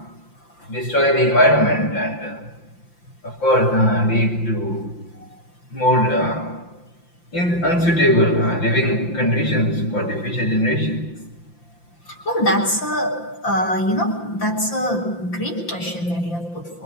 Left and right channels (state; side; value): late; right; 5.8 ms